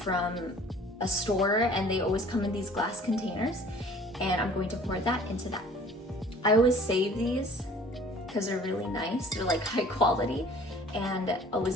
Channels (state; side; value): normal; both; correlation 0.50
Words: a store, and they always come in these glass containers, and I'm going to pour that into that. I always save these because they're really nice. They're like high quality, and